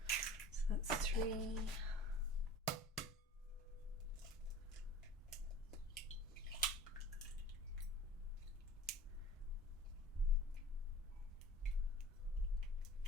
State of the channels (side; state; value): both; normal; correlation 0.42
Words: So that's 3.